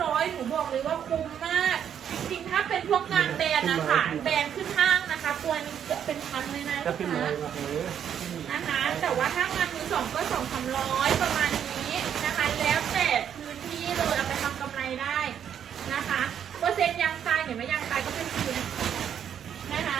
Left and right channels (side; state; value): left; quieter; 8.9 dB